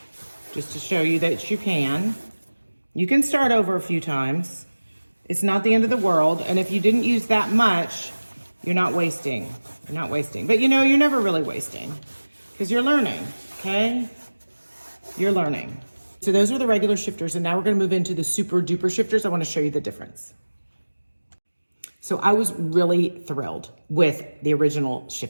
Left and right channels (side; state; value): both; inverted; correlation -1.00